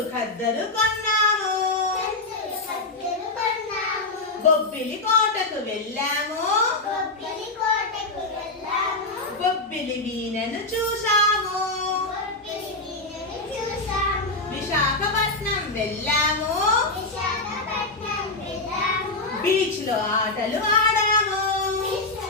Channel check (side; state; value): right; quieter; 3.1 dB